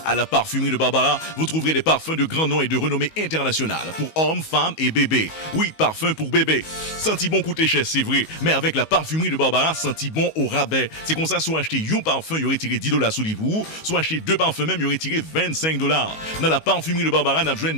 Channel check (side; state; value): right; late; 19 ms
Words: À la parfumerie de Barbara, vous trouverez des parfums de grand nom et de renommée internationale pour hommes, femmes et bébés. Oui, parfum pour bébé. Senti bon coûter cher, c'est vrai, mais avec la parfumerie de Barbara, senti bon au rabais. C'est comme ça, soit acheter un parfum, il y aurait tiré $10 sous vous, soit acheter 2 parfums même, il y aurait tiré $25. Dans la parfumerie de Barbara, on a besoin de